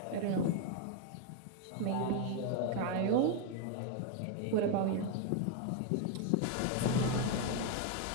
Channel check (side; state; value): both; different; correlation 0.01